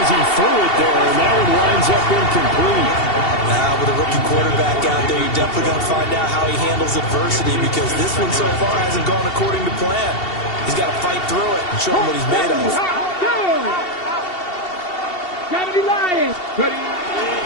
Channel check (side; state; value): right; late; 2.7 ms